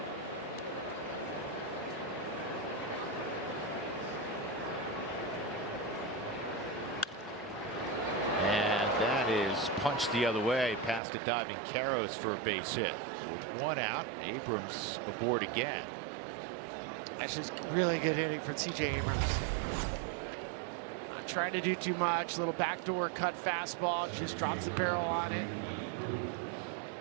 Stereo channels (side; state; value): left; drops out; at 11.0 s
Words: Punched the other way past a diving Karros for a base hit. So with 1 out, Abrams aboard again. That's just really good hitting for C.J. Abrams. Not trying to do too much. Little backdoor cut fastball. Just drops the barrel on it.